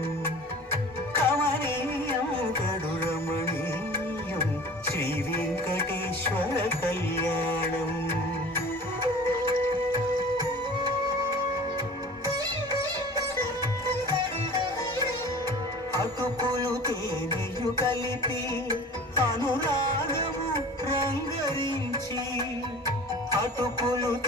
కమనీయం గడురమణీయం శ్రీ వెంకటేశ్వర కళ్యాణం అటుకులు తేనెయు కలిపి అనురాగము రంగరించి అటుకులు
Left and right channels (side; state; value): both; normal; correlation 0.41